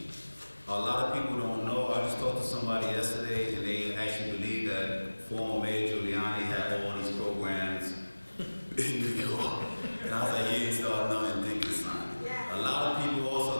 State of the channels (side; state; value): both; inverted; correlation -1.00